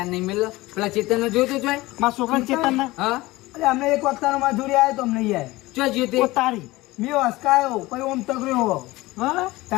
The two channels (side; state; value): right; quieter; 19.7 dB